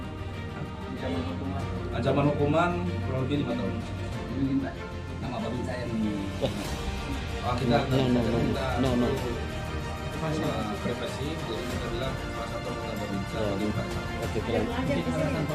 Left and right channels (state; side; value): identical; both; correlation 1.00